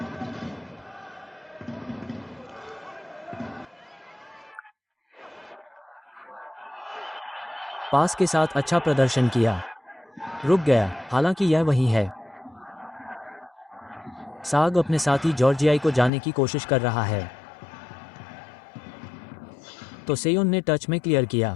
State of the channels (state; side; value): drops out; right; at 16.1 s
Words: पास के साथ अच्छा प्रदर्शन किया। रुक गया, हालांकि यह वही है। साग अपने साथी जॉर्जियाई को जाने की कोशिश कर रहा है। तो सेयोन ने टच में क्लियर